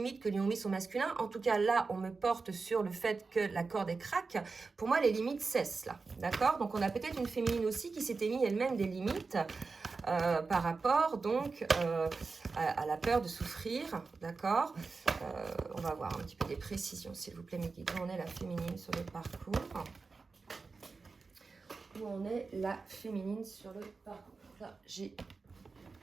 que lui ont mis son masculin? En tout cas là on me porte sur le fait que la corde est craque. Pour moi les limites cessent là, d'accord? Donc on a peut-être une féminine aussi qui s'était mis elle-même des limites par rapport donc à la peur de souffrir, d'accord? On va voir un petit peu des précisions, s'il vous plaît, mes guides. Où en est la féminine sur le parcours? Où en est la féminine sur le parcours? Là, j'ai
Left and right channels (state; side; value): quieter; left; 4.3 dB